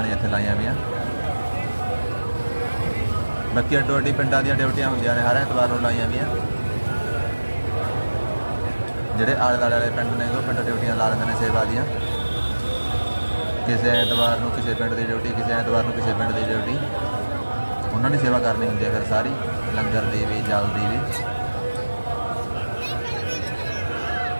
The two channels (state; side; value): inverted; both; correlation -1.00